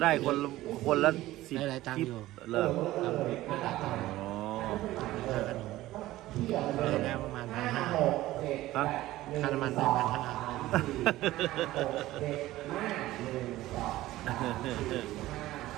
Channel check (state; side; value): quieter; left; 16.2 dB